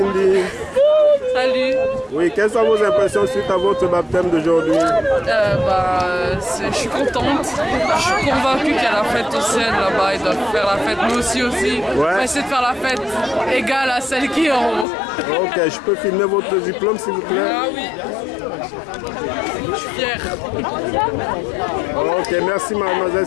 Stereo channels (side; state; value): right; drops out; at 14.9 s